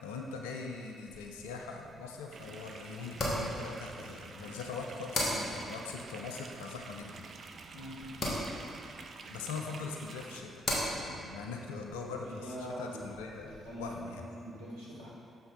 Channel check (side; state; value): both; normal; correlation 0.63